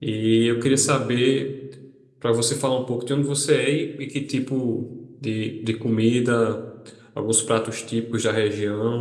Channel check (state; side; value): identical; both; correlation 1.00